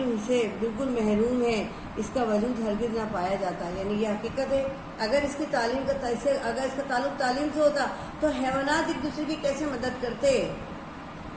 سے بالکل محروم ہے اس کا وجود ہرگز نہ پایا جاتا. یعنی یہ حقیقت ہے. اگر اس کی تعلیم کا اگر اس کا تعلق تعلیم سے ہوتا تو حیوانات ایک دوسرے کی کیسے مدد کرتے؟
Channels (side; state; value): both; identical; correlation 1.00